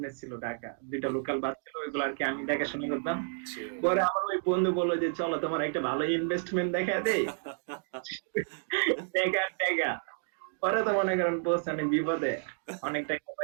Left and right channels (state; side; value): silent; left; digital silence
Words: ছিল, ঢাকা দুইটা হুম, লোকাল বাস ছিল, ওইগুলো আর কি আমি দেখাশোনা করতাম। ছিল। পরে আমার ওই বন্ধু বললো যে চলো তোমার একটা ভালো ইনভেস্টমেন্ট দেখা দেই, টাকা টাকা। পরে তো মনে করেন পোস্ট অনেক বিপদে, অনেক টাকা